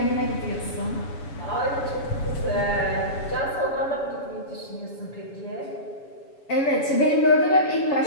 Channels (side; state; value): right; late; 7.1 ms